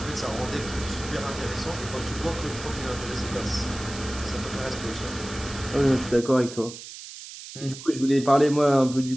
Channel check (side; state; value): right; noise; hiss, 13 dB below the sound